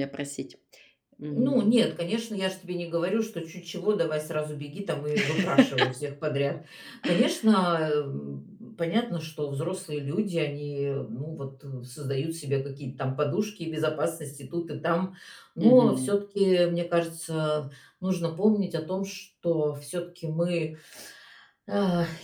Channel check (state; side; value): identical; both; correlation 1.00